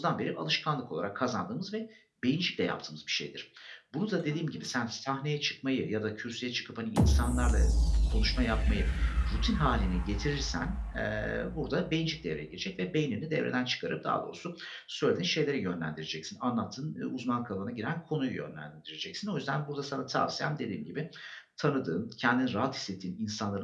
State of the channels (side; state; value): both; identical; correlation 1.00